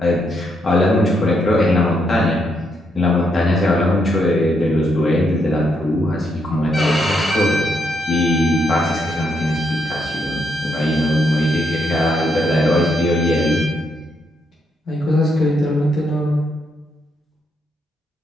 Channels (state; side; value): normal; both; correlation 0.77